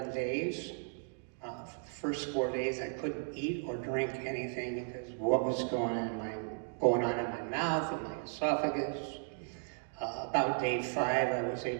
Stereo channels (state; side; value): silent; left; 54 dB below the other